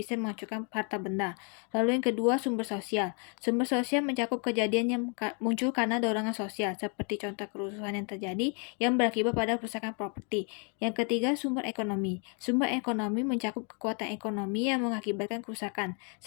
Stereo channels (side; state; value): right; quieter; 38.3 dB